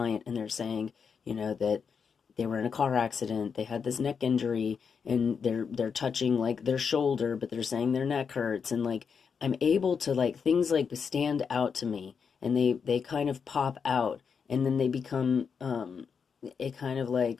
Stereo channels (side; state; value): right; quieter; 6.2 dB